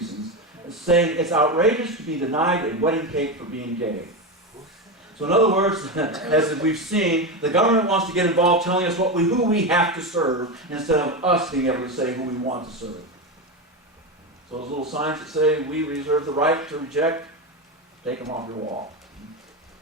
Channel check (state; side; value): normal; both; correlation 0.16